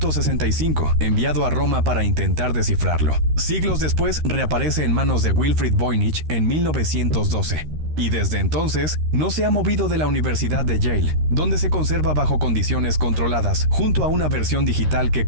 enviado a Roma para intentar descifrarlo. Siglos después, reaparece en manos de Wilfrid Voynich en 1912. Y desde entonces, no se ha movido de la Universidad de Yale, donde se conserva bajo condiciones controladas, junto a una versión digital que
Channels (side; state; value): left; late; 13 ms